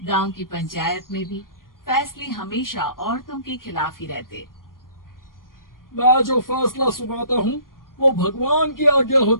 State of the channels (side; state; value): right; late; 0.91 ms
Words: गांव की पंचायत में भी फैसले हमेशा औरतों के खिलाफ ही रहते। मैं जो फैसला सुनाता हूँ वो भगवान की आज्ञा